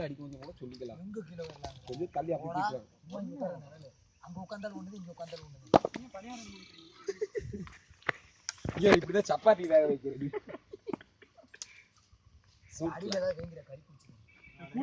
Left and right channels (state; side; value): identical; both; correlation 1.00